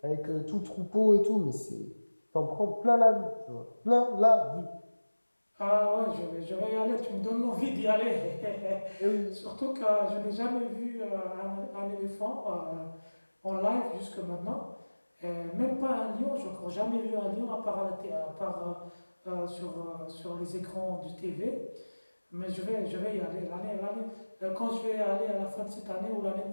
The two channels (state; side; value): inverted; both; correlation -1.00